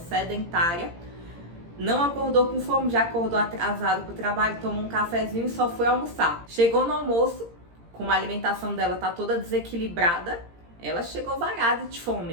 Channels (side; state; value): left; late; 17 ms